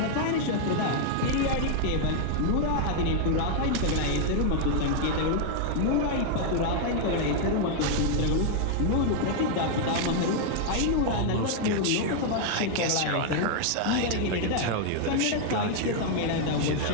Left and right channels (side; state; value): both; different; correlation 0.00